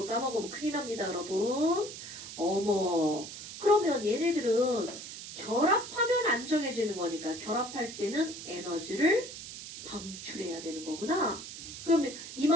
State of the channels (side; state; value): right; noise; hiss, 11 dB below the sound